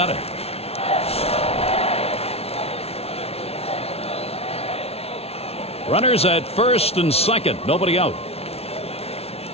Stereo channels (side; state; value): right; late; 0.30 ms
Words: it. Runners at first and second. Nobody out.